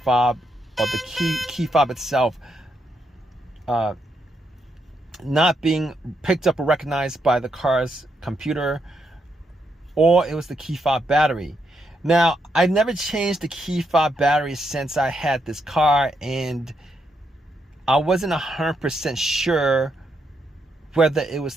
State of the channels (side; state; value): both; normal; correlation 0.80